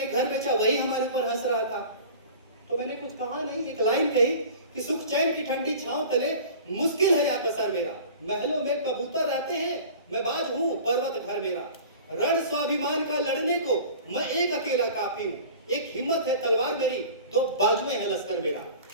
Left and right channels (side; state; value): both; inverted; correlation -0.41